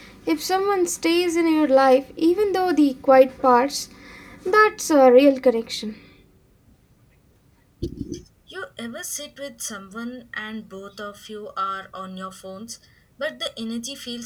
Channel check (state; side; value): identical; both; correlation 1.00